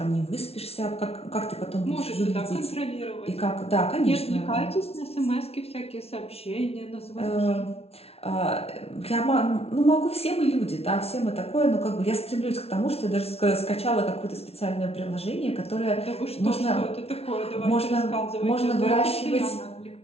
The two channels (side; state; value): right; late; 0.30 ms